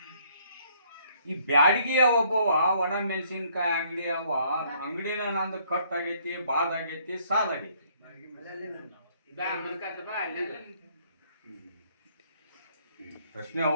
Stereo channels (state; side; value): inverted; both; correlation -0.64